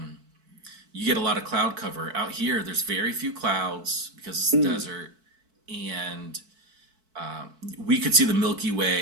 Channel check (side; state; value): left; late; 4.6 ms